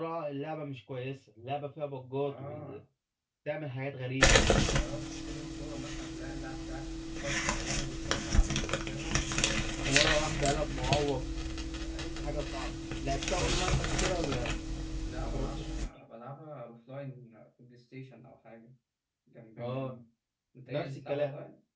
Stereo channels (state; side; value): identical; both; correlation 1.00